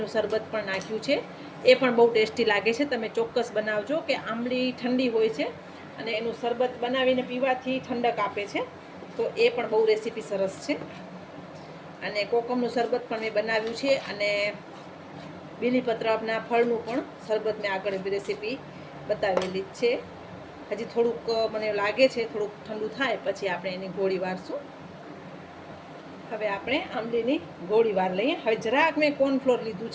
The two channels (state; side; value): identical; both; correlation 1.00